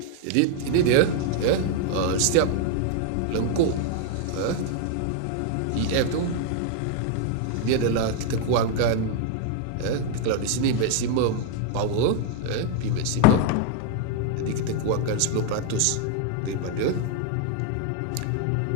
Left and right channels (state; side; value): different; both; correlation 0.00